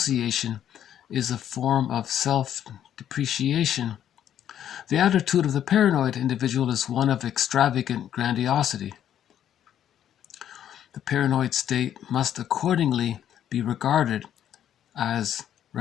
is a form of self-depreciation, the attitude of the paranoid individual is one of extravagant grandiosity. The paranoid state must accordingly be regarded as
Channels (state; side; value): quieter; right; 10.3 dB